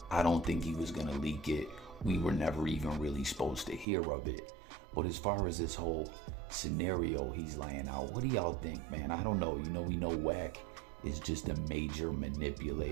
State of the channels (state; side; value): drops out; left; at 3.9 s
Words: I don't think he was gonna leak it. We were never even really supposed to hear of it. But as far as this whole scenario he's laying out, what do y'all think, man? I don't know. You know, we know WAC is just a major